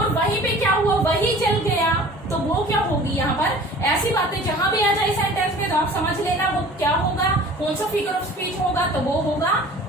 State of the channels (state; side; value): normal; both; correlation 0.45